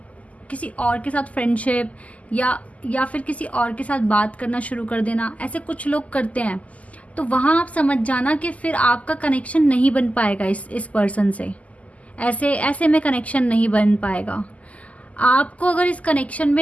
और के साथ फ्रेंडशिप या फिर किसी और के साथ बात करना शुरू कर देना, ऐसे कुछ लोग करते हैं। तो वहाँ आप समझ जाना कि फिर आपका कनेक्शन नहीं बन पाएगा इस पर्सन से। ऐसे में कनेक्शन नहीं बन पाएगा। आपको अगर इस कनेक्शन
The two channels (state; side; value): late; right; 0.071 ms